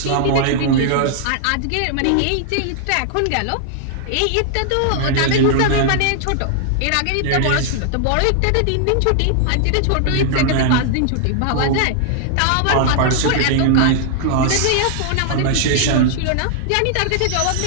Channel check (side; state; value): both; different; correlation -0.01